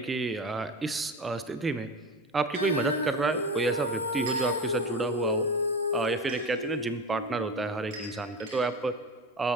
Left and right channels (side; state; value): both; normal; correlation 0.26